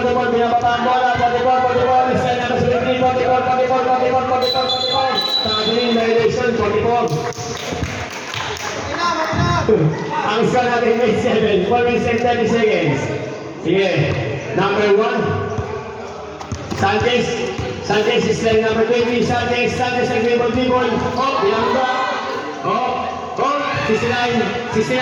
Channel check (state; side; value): identical; both; correlation 1.00